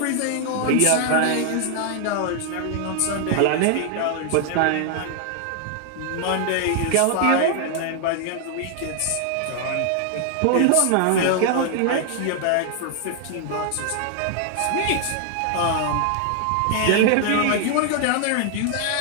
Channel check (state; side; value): different; both; correlation 0.00